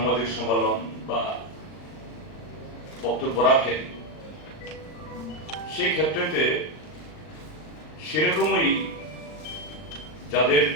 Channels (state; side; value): late; right; 39 ms